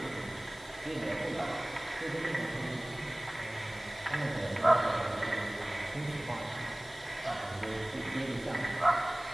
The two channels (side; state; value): left; noise; hiss, 21 dB below the sound